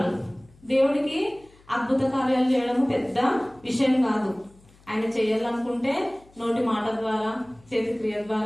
దేవుడికి అద్భుత కార్యాలు చేయడము పెద్ద విషయం కాదు. ఆయన చేయాలనుకుంటే నోటి మాట ద్వారా, చేతి క్రియ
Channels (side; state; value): left; noise; hum, 28 dB below the sound